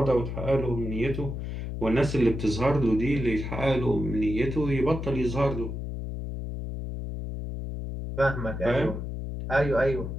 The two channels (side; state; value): left; noise; hum, 5 dB below the sound